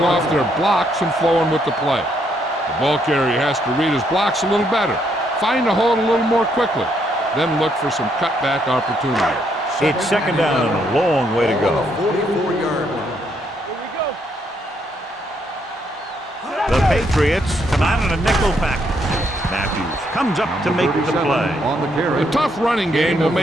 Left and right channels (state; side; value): normal; both; correlation 0.74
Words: off their blocks and flowing with the play. The ball carrier has to read his blocks a little better, find a hold a little more quickly, then look for some cutback opportunity. It's second down and a long way to go. 44-yard line. The Patriots come out in a nickel package. Matthews comes up to make the play. On the carry. A tough running game will